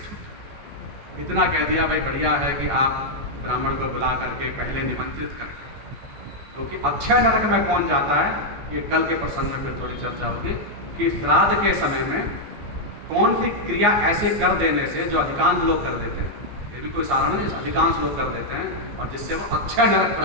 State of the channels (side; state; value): left; late; 14 ms